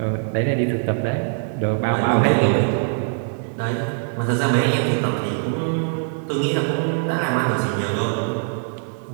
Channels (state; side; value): silent; left; 56 dB below the other